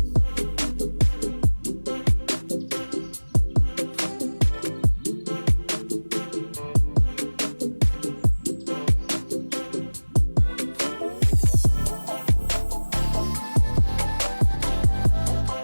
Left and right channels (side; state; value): both; inverted; correlation -1.00